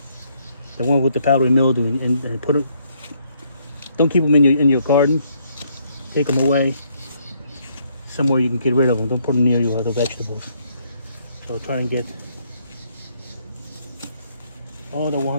one with the powdery mildew and put it. Don't keep them in your garden. Take them away somewhere you can get rid of them. Don't put them near your other vegetables. So try and get all the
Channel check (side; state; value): both; inverted; correlation -0.70